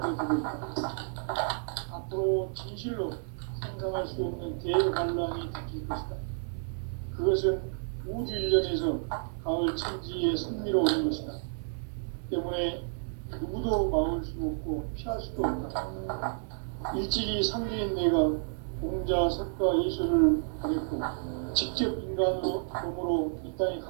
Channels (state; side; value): silent; left; 55 dB below the other